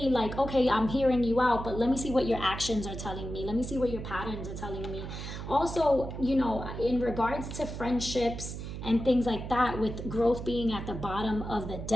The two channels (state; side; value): noise; right; hum, 8 dB below the sound